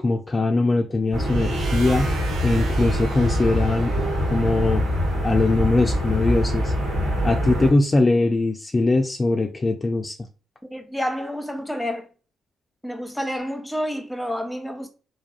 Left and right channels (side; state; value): both; normal; correlation 0.91